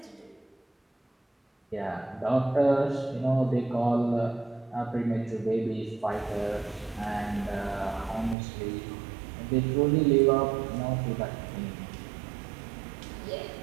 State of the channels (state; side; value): drops out; left; at 8.3 s